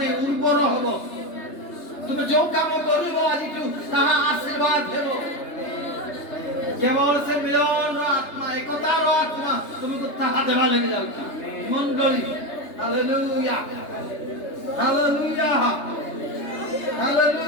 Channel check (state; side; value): late; right; 3.3 ms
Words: ଉର୍ବର ହେବ। তুমি ଯୋଉ କାମ କରିବ ଆଜିଠୁ ତାହା ଆଶୀର୍ବାଦ ହେବ। କେବଳ ସେ ମିଳନର ଆତ୍ମା, ଏକତାର ଆତ୍ମା ତୁମକୁ ତାହା ଦେବା ଲାଗି ଯାଉଛି। ମଣ୍ଡଳୀ ହାଲେଲୁୟା, ହାଲେଲୁୟା,